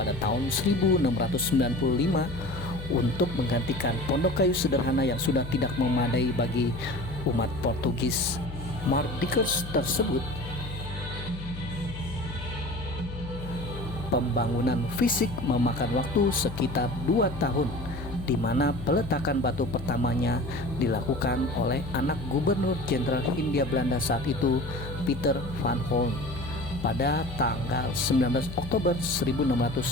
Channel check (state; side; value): noise; left; hum, 10 dB below the sound